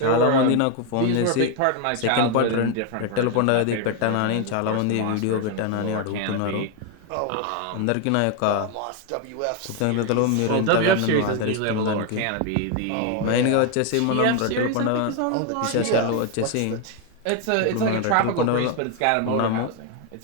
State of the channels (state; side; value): different; both; correlation 0.01